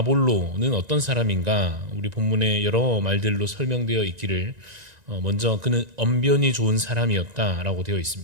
어떤 사람인가, 우리 본문에 여러 말들로 설명되어 있기를, 먼저 그는 언변이 좋은 사람이었다라고 되어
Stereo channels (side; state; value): left; late; 1.9 ms